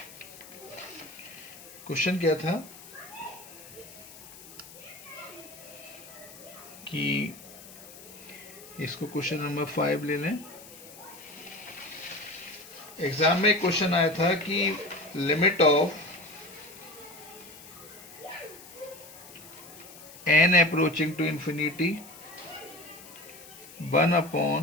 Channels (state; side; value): noise; left; hiss, 18 dB below the sound